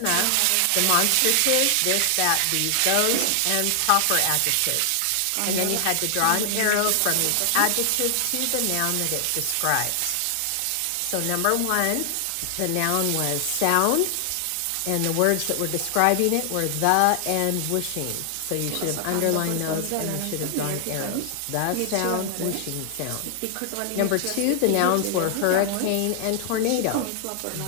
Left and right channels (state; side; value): different; both; correlation 0.00